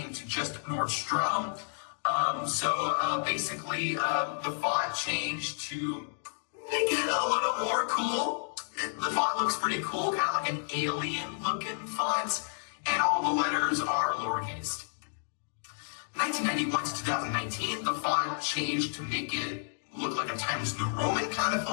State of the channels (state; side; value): silent; right; digital silence